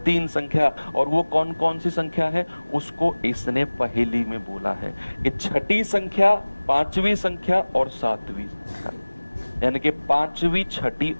3 संख्या। और वो कौन कौन सी संख्या है? उसको इसने पहेली में बोला है कि छठी संख्या, 5वीं संख्या और 7वीं संख्या, यानी कि 5वीं, छठी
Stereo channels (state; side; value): inverted; both; correlation -1.00